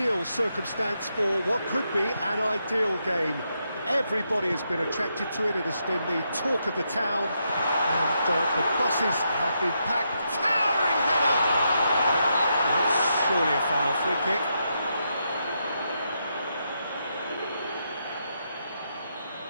circumstance for what could be an ideal game. Everybody has been attracted to it. It has been the talk of the town and the buses have been packed. Towering header! That's surely a foul. Free kick.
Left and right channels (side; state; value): both; inverted; correlation -0.81